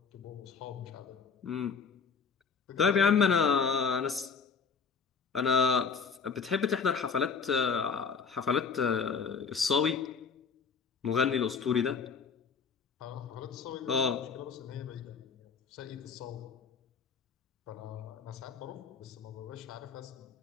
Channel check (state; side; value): quieter; right; 5.8 dB